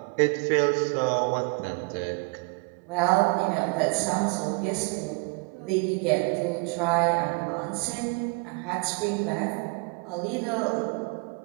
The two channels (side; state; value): left; quieter; 32.0 dB